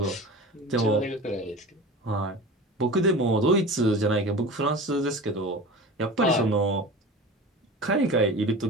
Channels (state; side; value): normal; both; correlation 0.34